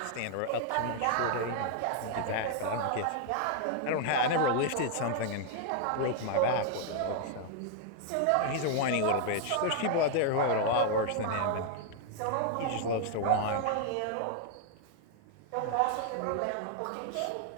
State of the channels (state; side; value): different; both; correlation 0.00